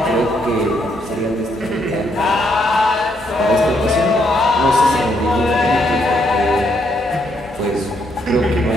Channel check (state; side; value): normal; both; correlation 0.74